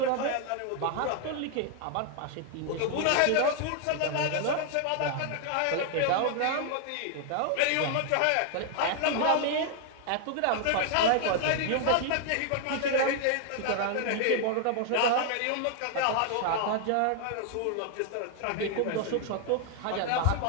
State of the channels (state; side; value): different; both; correlation 0.00